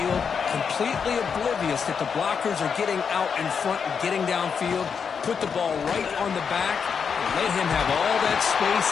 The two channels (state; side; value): quieter; right; 6.4 dB